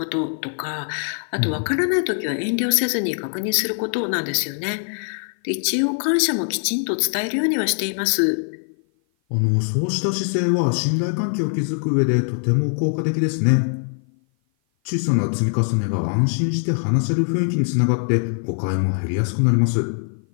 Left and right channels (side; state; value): right; silent; 56 dB below the other